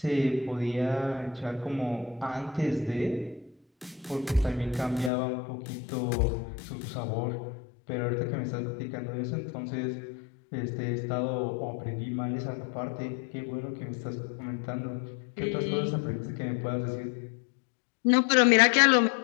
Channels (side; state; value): right; drops out; at 5.1 s